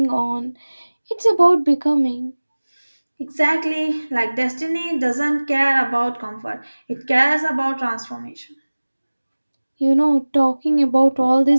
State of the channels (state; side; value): inverted; both; correlation -1.00